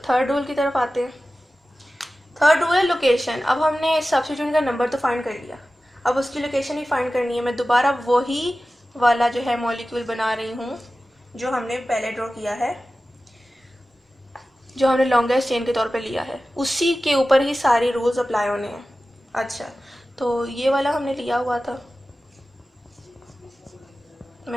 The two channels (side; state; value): both; normal; correlation 0.95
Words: थर्ड रूल की तरफ आते हैं। थर्ड रूल है लोकेशन। अब हमने सब्स्टिट्यूट का नंबर तो फाइंड कर लिया, अब उसकी लोकेशन ही फाइंड करनी है। मैं दोबारा वही वाला जो है मॉलिक्यूल बना रही हूँ जो हमने पहले ड्रॉ किया है, जो हमने लॉन्गेस्ट चेन के तौर पे लिया है, उसी के ऊपर ही सारे रूल्स अप्लाई होने हैं। अच्छा, तो ये वाला हमने लिया हुआ था।